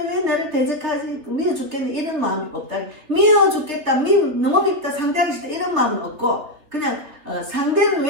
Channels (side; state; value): left; late; 3.5 ms